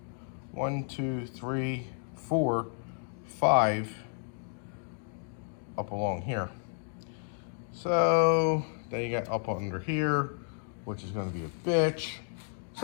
1, 2, 3, 4, 5 up along here. So then you got up under here, which is going to be a bitch.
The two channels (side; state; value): right; silent; 56 dB below the other